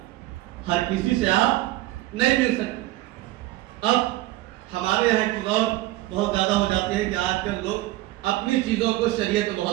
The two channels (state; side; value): quieter; left; 17.4 dB